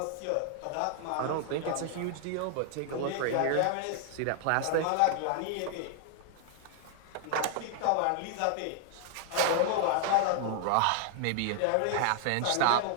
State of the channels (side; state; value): both; different; correlation 0.00